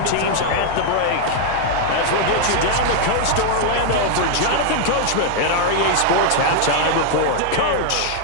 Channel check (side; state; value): both; different; correlation 0.00